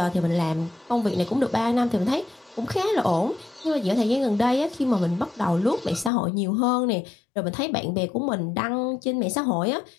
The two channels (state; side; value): drops out; right; at 6.1 s